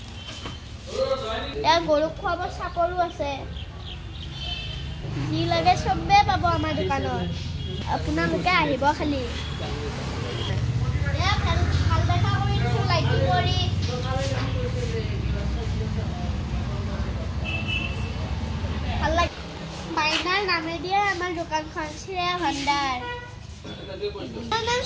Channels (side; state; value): both; identical; correlation 1.00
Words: এয়া গৰুক খুৱাব চাপৰো আছে যি লাগে চবেই পাব আমাৰ দোকানত আপোনালোকে আহিব খালি এয়া ভাল দেখা কৰি দিছোঁ লাইটিং কৰি ভাল লাগে মাইনাৰ নামেদিয়ে আমাৰ দোকানখন শ্ৰেয়া ভাণ্ডাৰ নাম